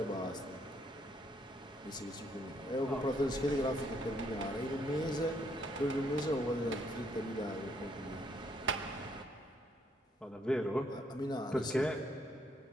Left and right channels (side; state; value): both; normal; correlation 0.70